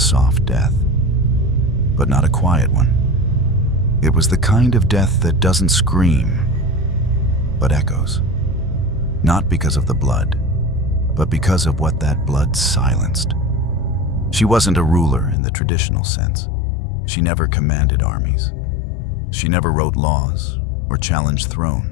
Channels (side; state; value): right; drops out; at 15.4 s